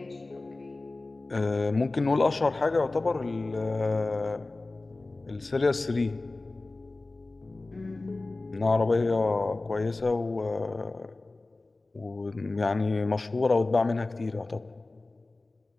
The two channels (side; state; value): right; quieter; 3.2 dB